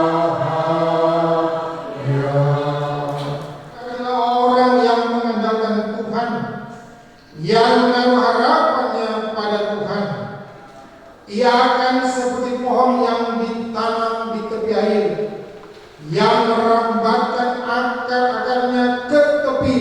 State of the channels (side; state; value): both; identical; correlation 1.00